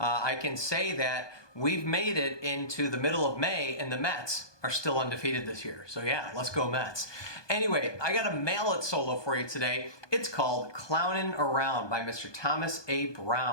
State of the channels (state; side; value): late; right; 1.2 ms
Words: can say that we've made it into the middle of May and the Mets are still undefeated this year. So yeah, let's go Mets. Anyway, I got a mallet solo for you today. It's called Clownin Around by Mr. Thomas A.